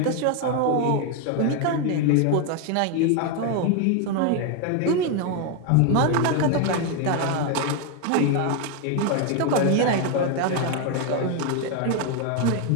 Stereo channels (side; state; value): both; different; correlation 0.01